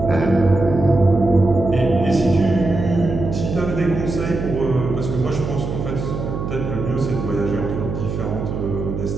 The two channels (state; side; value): noise; right; hum, 5 dB below the sound